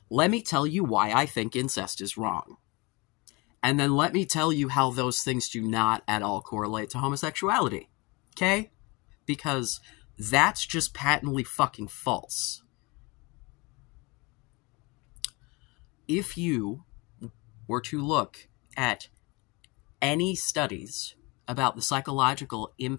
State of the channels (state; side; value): quieter; right; 26.5 dB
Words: Let me tell you why I think incest is wrong. And then let me tell you how those things do not at all correlate to homosexuality. Okay? Because that's just patently fucking false. If you were to look at any studies about the psychological